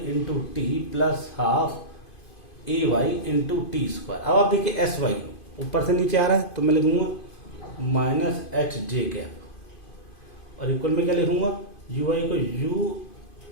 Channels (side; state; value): right; late; 2.5 ms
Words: T plus half A Y into T square. अब आप देखिए एस वाई ऊपर से नीचे आ रहा है, तो मैं लिखूंगा माइनस एच जे कैप, और इक्वल में क्या लिखूंगा? यू वाई को यू